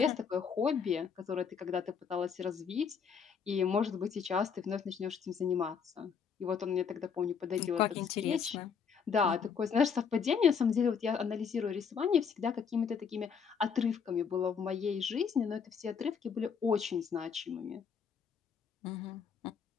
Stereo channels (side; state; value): right; quieter; 6.5 dB